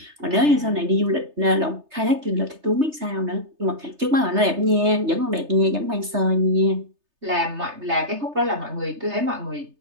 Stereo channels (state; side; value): late; left; 3.3 ms